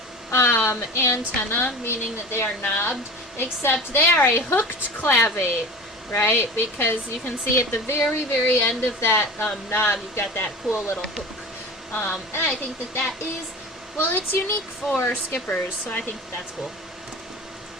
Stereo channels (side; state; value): both; normal; correlation 0.35